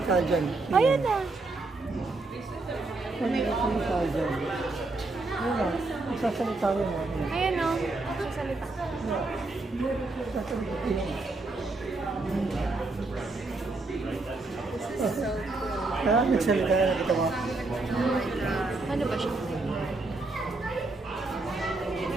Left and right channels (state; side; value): quieter; left; 3.3 dB